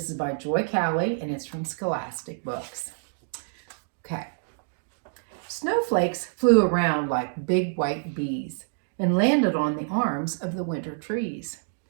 is by Joy Cowley and it's from Scholastic Books. Okay. Snowflakes flew around like big white bees and landed on the arms of the winter trees.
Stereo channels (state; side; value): silent; left; digital silence